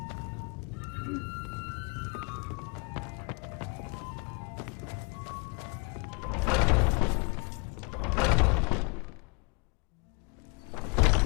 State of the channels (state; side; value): quieter; right; 32.7 dB